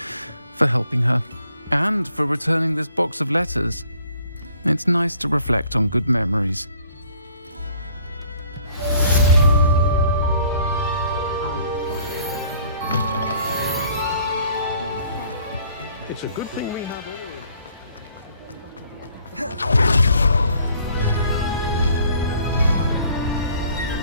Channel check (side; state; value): both; inverted; correlation -0.59